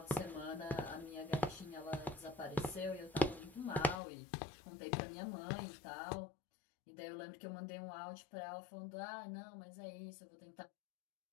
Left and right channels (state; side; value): drops out; right; at 4.0 s